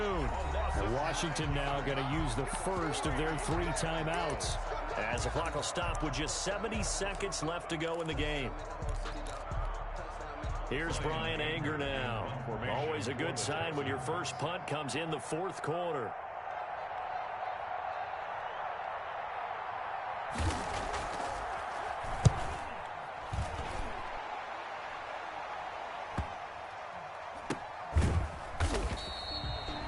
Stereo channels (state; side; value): identical; both; correlation 1.00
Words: Washington now going to use the first of their 3 timeouts as the clock will stop with just 70 seconds left to go in the game. Here's Brian Anger now. Always a good sign when your first punt comes in the 4th quarter.